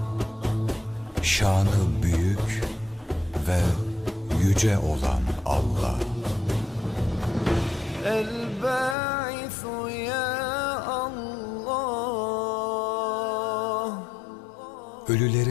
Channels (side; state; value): right; drops out; at 9.0 s